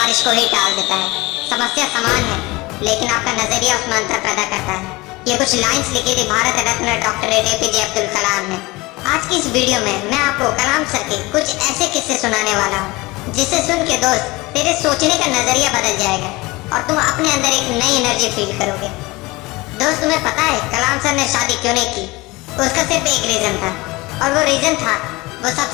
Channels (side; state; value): right; quieter; 22.4 dB